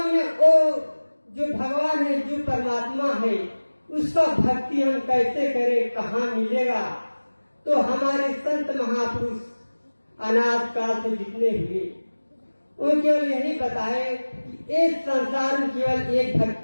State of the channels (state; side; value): inverted; both; correlation -1.00